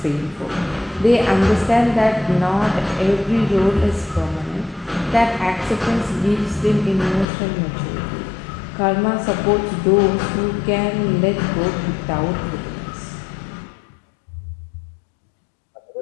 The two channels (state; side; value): drops out; right; at 7.2 s